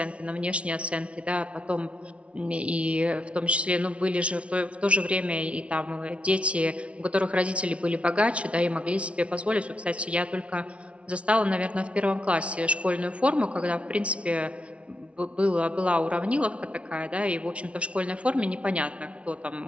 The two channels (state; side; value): late; left; 0.061 ms